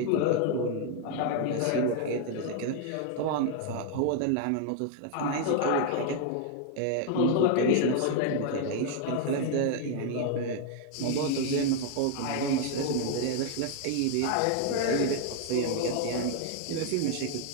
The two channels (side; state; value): both; different; correlation 0.00